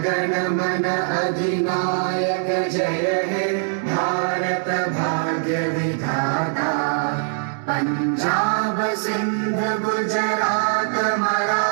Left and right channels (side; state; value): left; silent; digital silence